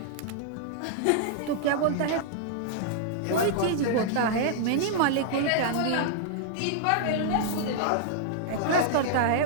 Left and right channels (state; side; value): different; both; correlation -0.01